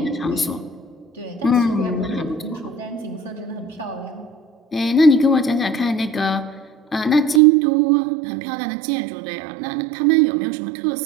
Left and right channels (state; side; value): drops out; left; at 7.4 s